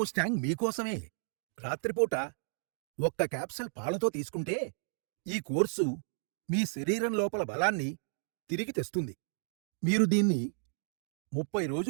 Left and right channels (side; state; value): left; silent; digital silence